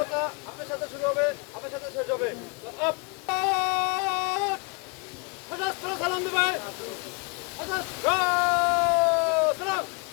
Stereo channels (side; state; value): right; quieter; 33.9 dB